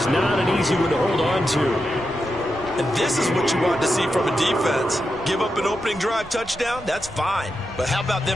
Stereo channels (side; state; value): both; normal; correlation 0.87